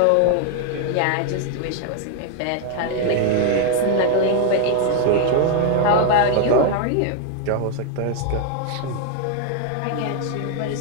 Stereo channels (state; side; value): different; both; correlation 0.00